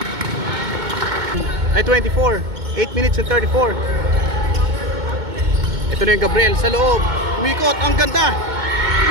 Ay 24, 8 minutes and 34. Ito na yung Gabriel sa loob. Umikot, ang ganda.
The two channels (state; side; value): late; left; 2.2 ms